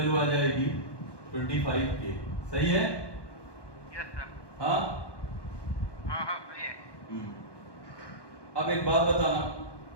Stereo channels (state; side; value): late; right; 1.2 ms